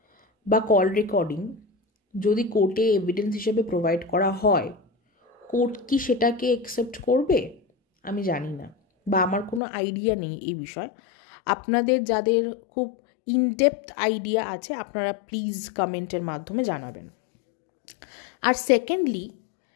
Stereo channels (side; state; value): right; drops out; at 9.6 s